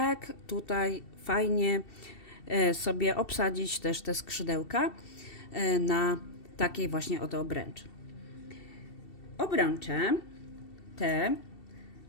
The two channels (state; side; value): late; right; 2.7 ms